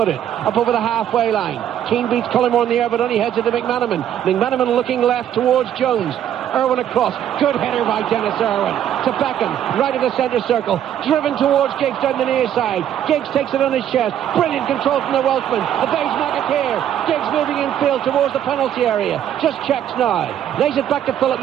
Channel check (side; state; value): left; quieter; 10.4 dB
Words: up over the halfway line. Keane beats Collymore in the air, but only heads it to McManaman. McManaman looking left towards Jones. Irwin across. Good header by Dennis Irwin to Beckham, right of the centre circle. Driven towards Giggs down the near side. Giggs takes it on his chest. Brilliant control from the Welshman. Evades McAteer. Giggs moving infield towards the penalty area. Just checks now. Lays it back to Philip